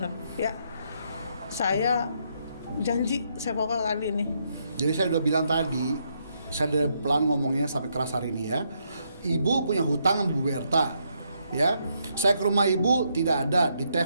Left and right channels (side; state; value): both; inverted; correlation -0.76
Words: ya. Saya janji saya pokoknya kali ini. Jadi saya udah bilang tadi, saya udah pelan ngomongnya sampai keras hari ini ya. Ibu punya hutang sama Bu Berta, ya. Saya ke rumah ibu tidak ada, di